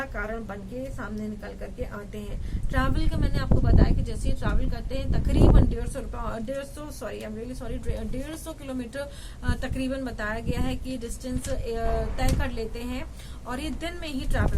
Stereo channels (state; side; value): identical; both; correlation 1.00